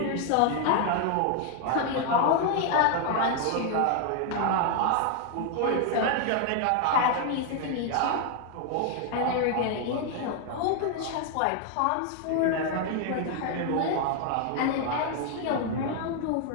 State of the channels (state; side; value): different; both; correlation 0.00